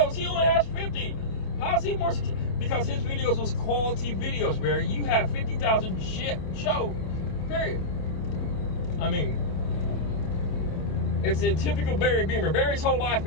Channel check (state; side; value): late; right; 28 ms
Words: He only has 50. How's he more successful? Because his videos was quality videos, Barry. You have 50,000 shit show. Period. I mean, it's a typical Barry Beamer. Barry's whole life